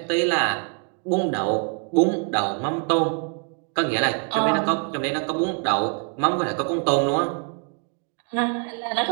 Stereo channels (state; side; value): quieter; left; 38.8 dB